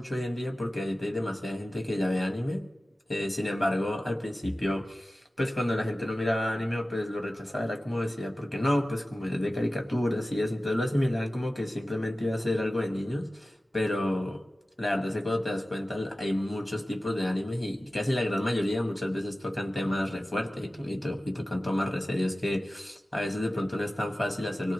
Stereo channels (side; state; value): both; normal; correlation 0.96